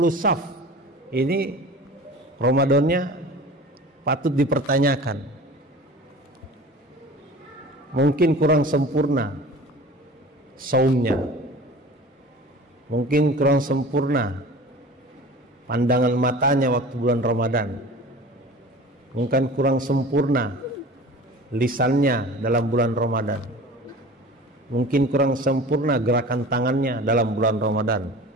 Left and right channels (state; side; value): normal; both; correlation 0.40